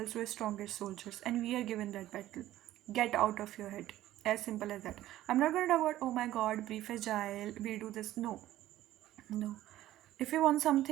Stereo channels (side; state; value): left; quieter; 14.2 dB